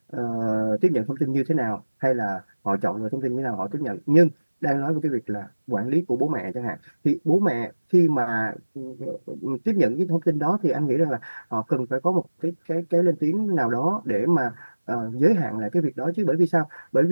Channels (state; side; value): inverted; both; correlation -1.00